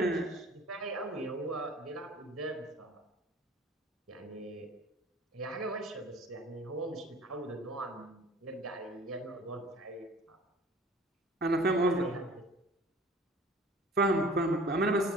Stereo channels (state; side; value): normal; both; correlation 0.48